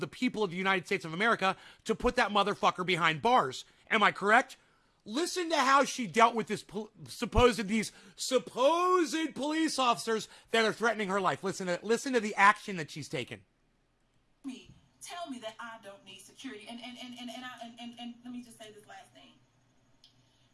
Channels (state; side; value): identical; both; correlation 1.00